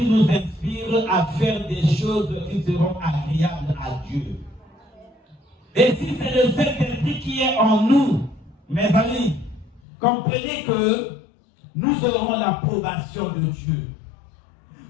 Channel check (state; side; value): drops out; right; at 9.8 s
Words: nous inspire à faire des choses qui seront agréables à Dieu. Et si c'est le Saint-Esprit qui est en nous, mes amis, comprenez que nous aurons l'approbation de Dieu.